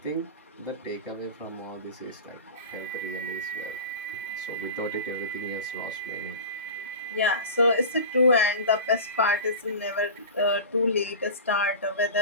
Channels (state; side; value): inverted; both; correlation -0.32